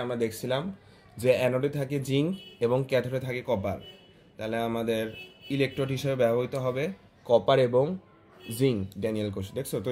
আমরা দেখছিলাম যে অ্যানোডে থাকে জিঙ্ক এবং ক্যাথোডে থাকে কপার। তাহলে আমাদের ইলেকট্রোড হিসেবে ব্যবহৃত হবে কপার এবং জিঙ্ক ড্যানিয়েল কোষ। দেখছো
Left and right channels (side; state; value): both; identical; correlation 1.00